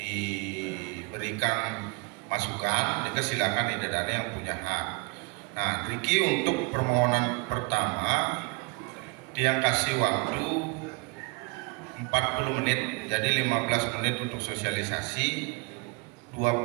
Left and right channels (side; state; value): left; quieter; 29.7 dB